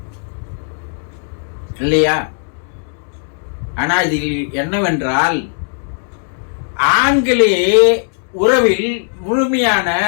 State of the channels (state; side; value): silent; right; 58 dB below the other